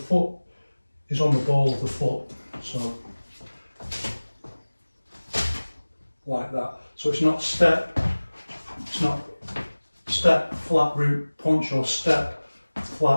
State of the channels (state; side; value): inverted; both; correlation -1.00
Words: is on the ball of the foot. So like that. So it's not step, flat root, punch, or step,